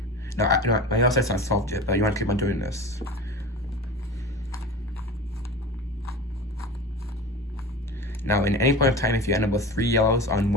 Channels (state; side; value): normal; both; correlation 0.32